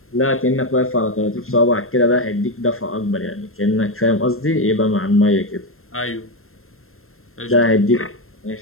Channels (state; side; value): late; right; 0.62 ms